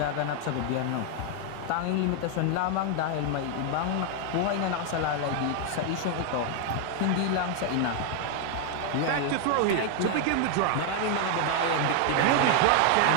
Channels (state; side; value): different; both; correlation 0.00